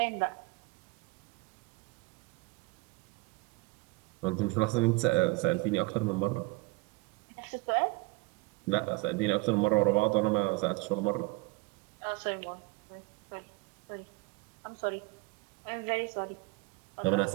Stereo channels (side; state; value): left; quieter; 23.6 dB